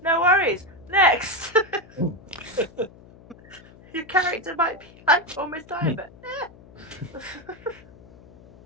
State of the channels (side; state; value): left; noise; hum, 23 dB below the sound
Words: no worries, next! Your character might be like almost dying, but